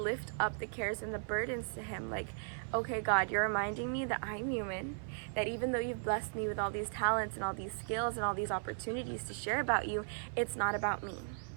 up the cares and the burdens to him. Like, okay, God, you're reminding me that I'm human, that even though you've blessed me with all these talents and all these skills and all these opportunities to share about you, it's not about me.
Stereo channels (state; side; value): silent; left; 53 dB below the other